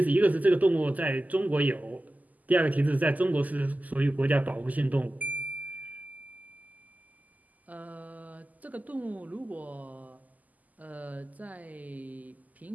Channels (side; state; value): left; late; 0.079 ms